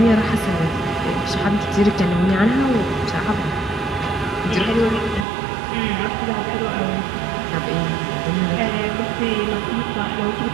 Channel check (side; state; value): left; drops out; at 5.2 s